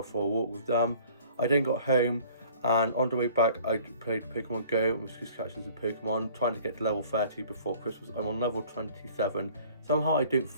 for a walk with them. I then got home, and on the way back I played Pokemon Go and was just catching some Pokemon, trying to get to level 30 before Christmas. I'm on level 27. Somehow I don't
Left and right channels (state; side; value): inverted; both; correlation -0.53